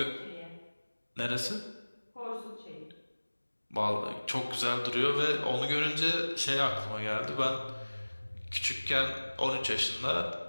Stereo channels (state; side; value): inverted; both; correlation -1.00